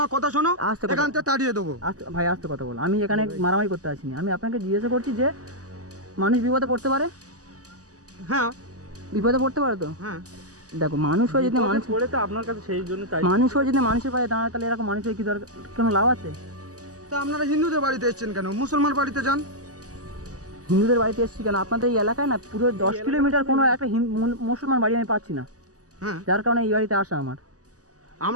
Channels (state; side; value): late; left; 0.67 ms